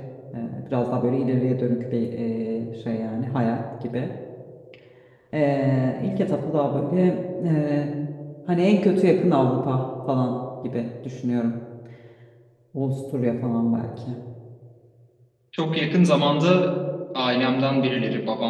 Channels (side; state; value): both; identical; correlation 1.00